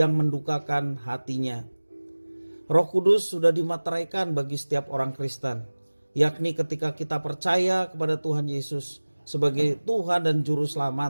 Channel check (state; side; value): inverted; both; correlation -1.00